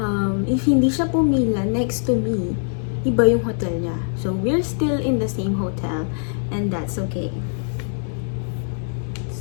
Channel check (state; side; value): silent; right; digital silence